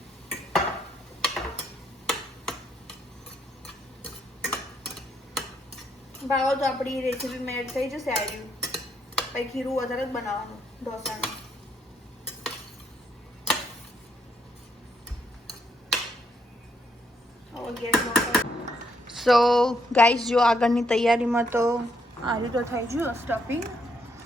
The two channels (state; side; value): normal; both; correlation 0.75